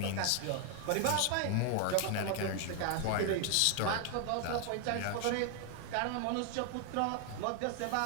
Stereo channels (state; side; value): different; both; correlation 0.00